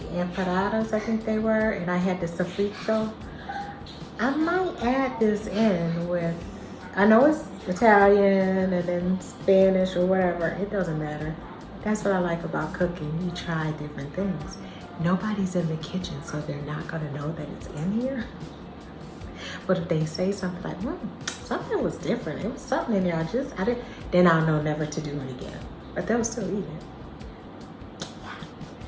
empanadas, I think they were, and I had the sofrito. I might add this in with, I know it's Italian and then Spanish or whatever, it doesn't matter. That's what I like about cooking. You try different things. Nobody's in the kitchen, so they're not gonna know that it's in here. But if they say something like, something was different, it was something in there, I didn't, then I'll know never to do it again. But they'll still eat it.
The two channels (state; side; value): identical; both; correlation 1.00